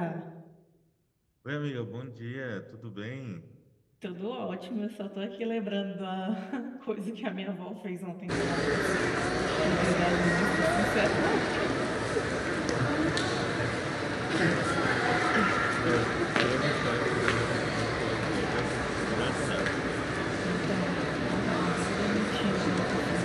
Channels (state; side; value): identical; both; correlation 1.00